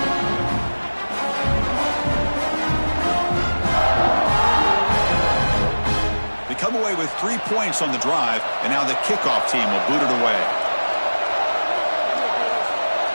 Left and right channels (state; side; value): inverted; both; correlation -1.00